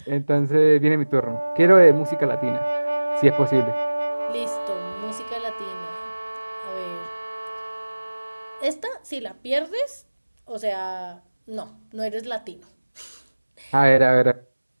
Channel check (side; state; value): both; inverted; correlation -1.00